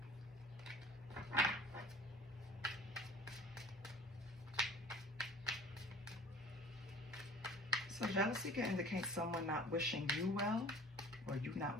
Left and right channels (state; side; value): normal; both; correlation 0.47